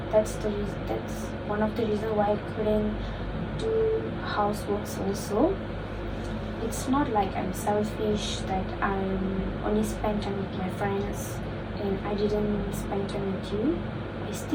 That's one of the reasons why I couldn't do houseworks also. It's not like I'm selfish that I'm only spend time with my friends and I didn't spend time with you. I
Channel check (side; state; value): both; identical; correlation 1.00